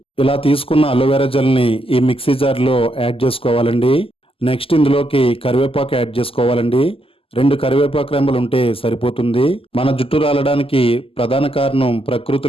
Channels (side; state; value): right; late; 0.26 ms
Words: ఇలా తీసుకున్న అలోవెరా జెల్ ని ఈ మిక్సీ జార్ లో యాడ్ చేసుకోవాలండి. నెక్స్ట్ ఇందులోకి కరివేపాకు యాడ్ చేసుకోవాలండి. 2 కరివేపాకు రెమ్మలు ఉంటే సరిపోతుంది. మన జుట్టు రాలడానికి ప్రధాన కారణం